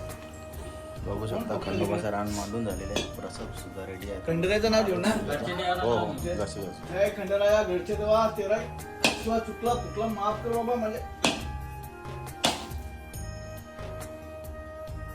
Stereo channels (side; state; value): both; identical; correlation 1.00